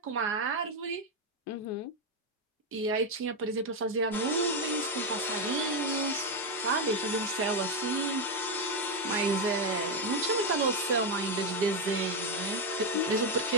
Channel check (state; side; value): normal; both; correlation 0.06